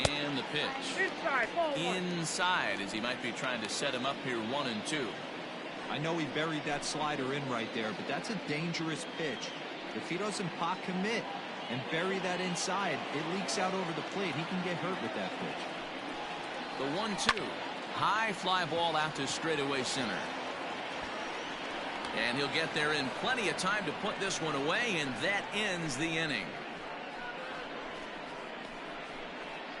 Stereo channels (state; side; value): identical; both; correlation 1.00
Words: and the pitch. Inside, as he might be trying to set him up here 1-2. I know he buried that slider in right there, but that's a dangerous pitch. If he doesn't pot commit and bury that inside, it leaks out over the plate. He can get hurt with that pitch. The 1-2. High fly ball out to straightaway center. And he'll get there in plenty of time to put this one away, and that ends the inning.